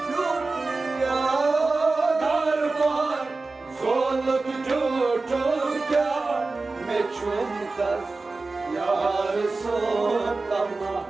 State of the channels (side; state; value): left; quieter; 3.6 dB